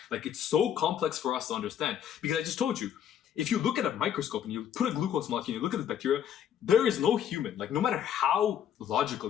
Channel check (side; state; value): right; quieter; 9.5 dB